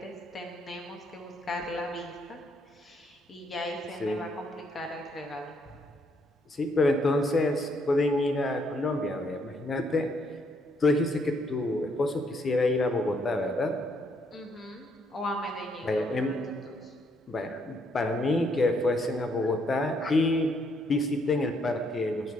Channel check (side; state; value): both; normal; correlation 0.71